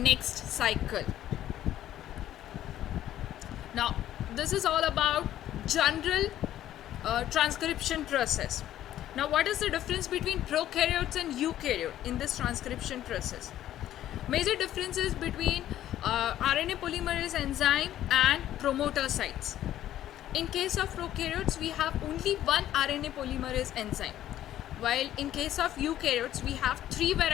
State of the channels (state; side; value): quieter; right; 12.5 dB